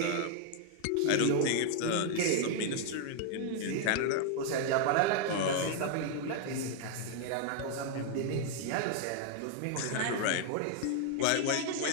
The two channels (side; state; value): both; different; correlation 0.00